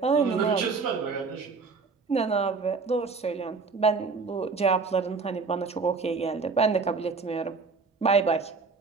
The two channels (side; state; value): left; quieter; 4.6 dB